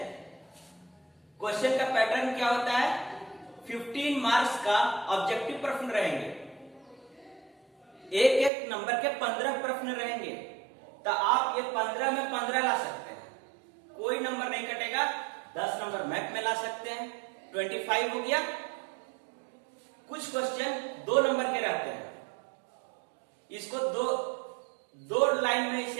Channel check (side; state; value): left; drops out; at 8.5 s